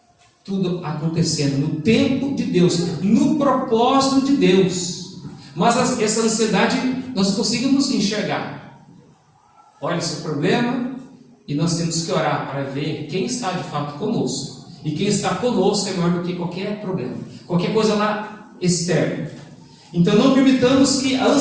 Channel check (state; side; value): identical; both; correlation 1.00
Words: Tudo acontecendo no tempo de Deus, no propósito de Deus. Mas essa ansiedade nós conseguimos enxergar. Olha esse problema, e nós temos que orar para ver quem está de fato conosco. E quem está conosco é maior do que qualquer problema, qualquer coisa lá externa. Então não permitamos que a